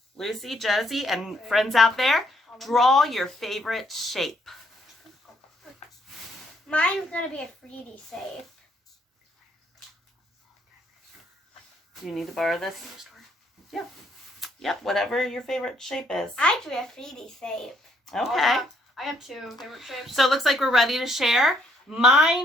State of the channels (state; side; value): normal; both; correlation 0.70